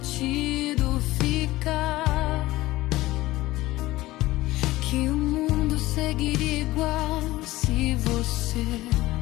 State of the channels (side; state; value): right; quieter; 17.8 dB